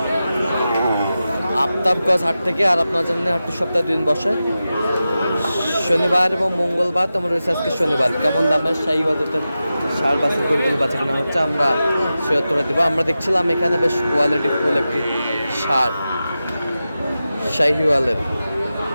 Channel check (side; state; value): both; inverted; correlation -0.93